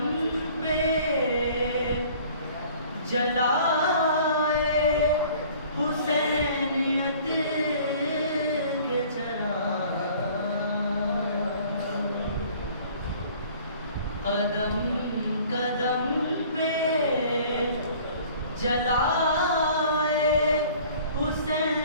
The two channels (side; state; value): both; inverted; correlation -0.51